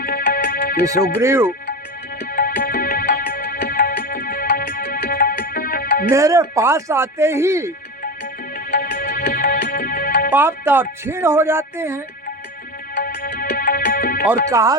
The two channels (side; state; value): both; normal; correlation 0.23